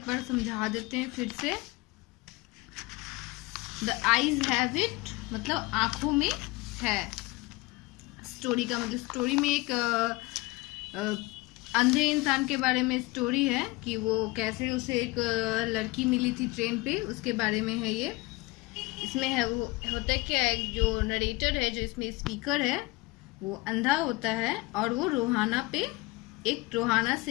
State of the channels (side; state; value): right; quieter; 22.2 dB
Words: बार समझा देते हैं फिर से। द आईज हैव इट मतलब आंखों में है। स्टोरी का मतलब स्टोरी में एक अंधे इंसान के बारे में स्टोरी है कि वो कैसे उसे एक लड़की मिली थी ट्रेन पे, उसके बारे में है ये। इसमें है वो होता है क्या, एक जो नरेटर है, जो इसमें स्पीकर है, वो अंधा होता है और वो रोहाना